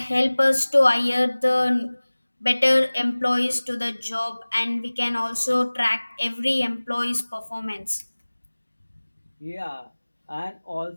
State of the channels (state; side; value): inverted; both; correlation -1.00